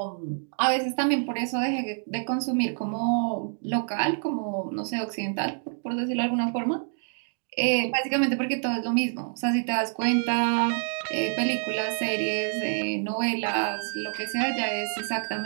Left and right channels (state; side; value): silent; left; 60 dB below the other